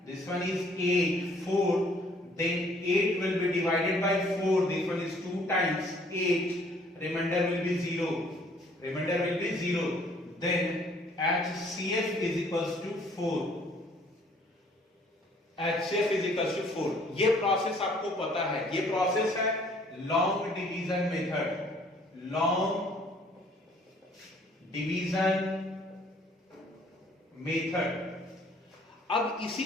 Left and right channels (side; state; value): both; normal; correlation 0.60